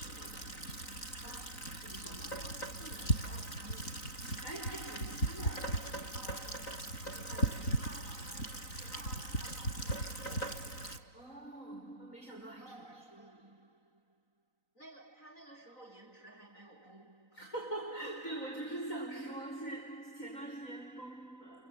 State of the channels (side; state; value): right; late; 3.9 ms